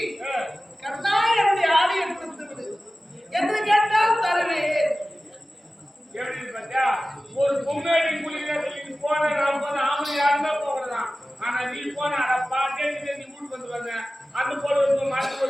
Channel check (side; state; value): both; normal; correlation 0.96